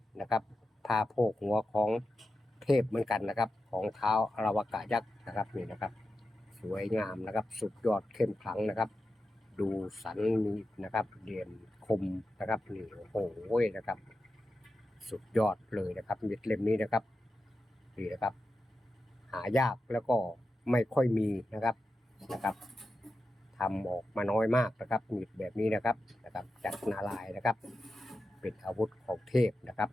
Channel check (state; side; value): normal; both; correlation 0.90